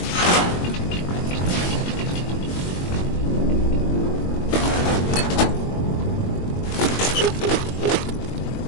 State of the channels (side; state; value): right; late; 22 ms